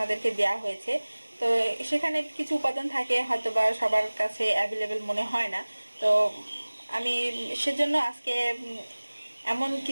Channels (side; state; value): both; inverted; correlation -1.00